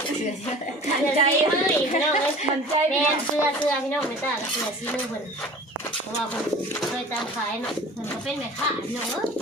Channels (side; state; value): both; normal; correlation 0.42